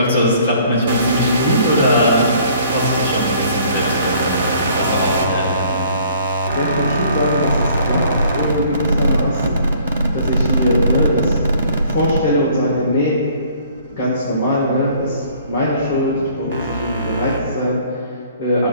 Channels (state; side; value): inverted; both; correlation -0.57